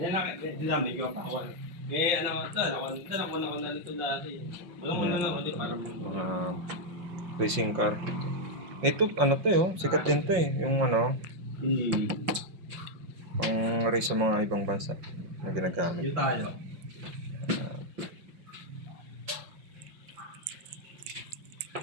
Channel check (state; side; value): late; left; 5.7 ms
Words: lang, dinamig ko pa ako. Ako na nito dati. Walang ako din para mga racing car. Ito, sikat din to eh. Yung pang race sa mga ibang bansa na ginagamit. Yung tayo.